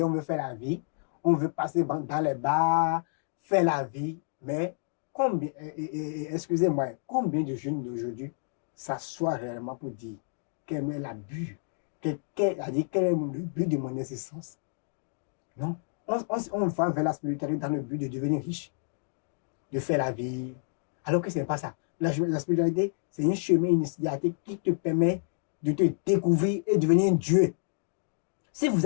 on veut faire la vie. On veut passer dans les bars, faire la vie. Mais combien, excusez-moi, combien de jeunes d'aujourd'hui s'assoient réellement pour dire quel est l'abus, quel est le but de mon existence? Non. On va vers la spiritualité dans le but de devenir riche, de faire la vie, alors que ce n'est pas ça. La spiritualité, c'est un chemin initiatique qui te permet de te découvrir et devenir un Dieu. Si vous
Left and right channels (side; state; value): right; silent; digital silence